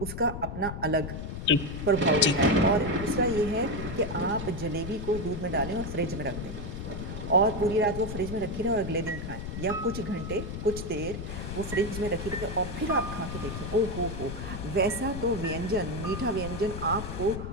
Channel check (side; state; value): left; noise; rumble, 6 dB below the sound